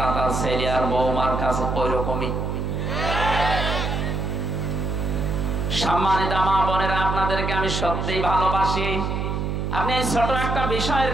তার ছেলে আর বৌমার কাছে ওই রকমই। সম্মানিত মা বোনেরা, আপনাদেরকে আমি সত্যিই ভালোবাসি। আপনি এই ছোট একটা বিষয়ের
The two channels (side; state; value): right; noise; hum, 1 dB below the sound